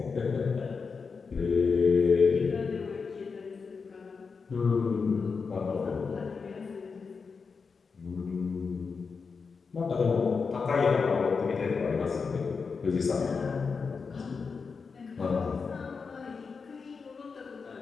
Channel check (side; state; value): right; quieter; 5.1 dB